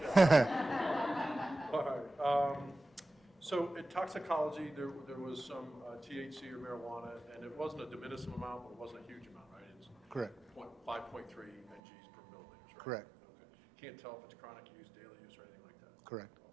All right. So in toxicology, there was some THC or marijuana, and it wasn't a de minimis amount, but it wasn't a huge amount, right? It's Correct. 5.3 mgs per milliliters, right? Correct. Okay. Can't tell if it's chronic use, daily use, or anything like that? Correct.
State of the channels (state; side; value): drops out; left; at 11.8 s